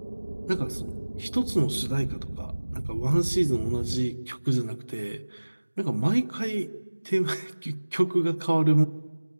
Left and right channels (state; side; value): inverted; both; correlation -1.00